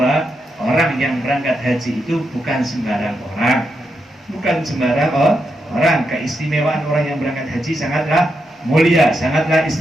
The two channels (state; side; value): normal; both; correlation 0.84